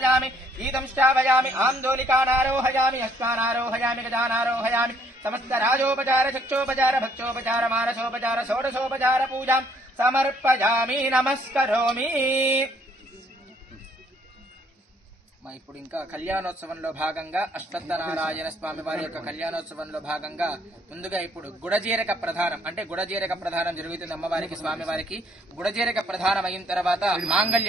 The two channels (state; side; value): normal; both; correlation 0.65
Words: గీతం శ్రావయామి. ఆందోళికానారోహయామి. అశ్వానారోహయామి. గజానారోహయామి. సమస్త రాజోపచార చక్షోపచార భక్షోపచార మానసోపచార షోడశోపచార పూజాం సమర్పయామి. నమస్కరోమి. ఇప్పుడు ఇంకా కళ్యాణోత్సవంలో భాగంగా అశ్వత్థనారాయణ స్వామి వారి యొక్క కళ్యాణోత్సవంలో భాగంగా ముందుగా ఇప్పుడు గుడజీరక ప్రధానం, అంటే గుడజీరక ప్రధానం జరుగుతుంది అమ్మవారికి స్వామివారికి. గుడజీరక ప్రధానం అయిన తర్వాత